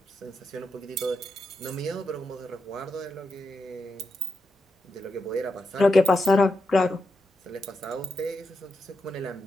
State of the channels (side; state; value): both; normal; correlation 0.86